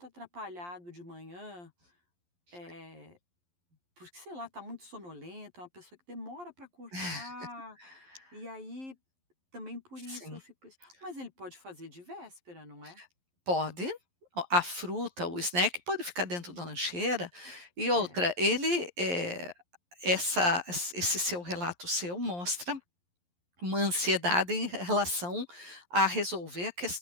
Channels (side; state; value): left; late; 11 ms